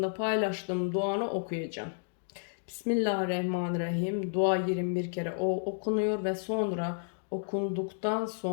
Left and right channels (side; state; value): right; silent; digital silence